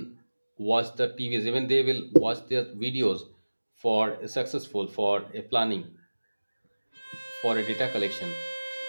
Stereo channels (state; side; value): inverted; both; correlation -1.00